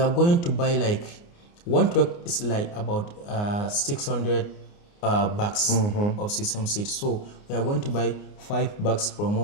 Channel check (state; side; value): late; right; 29 ms